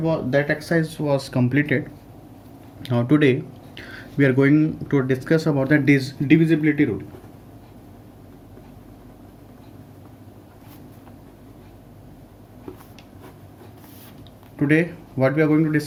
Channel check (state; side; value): identical; both; correlation 1.00